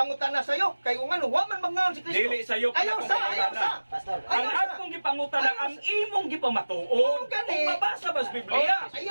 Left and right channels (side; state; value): both; inverted; correlation -1.00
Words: sayo kay kung ano wa man mangaon si Kristo. Dili sayo ka Ayaw na sa, pangutana. ayaw sa. Pastor. Ang akong gipangutana ang imong gipamatuod. Gani. Kung mabasa ba sa Biblia?